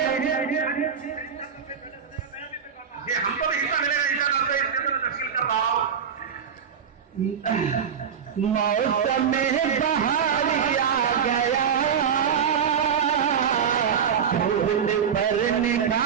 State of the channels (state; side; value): quieter; left; 7.4 dB